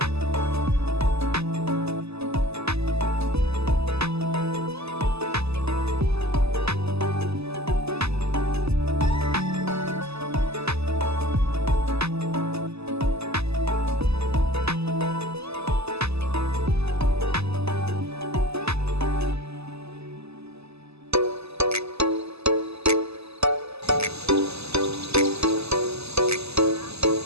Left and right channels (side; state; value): left; late; 0.79 ms